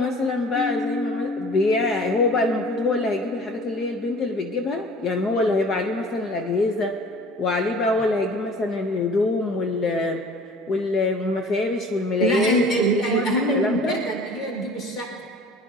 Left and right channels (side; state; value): both; normal; correlation 0.46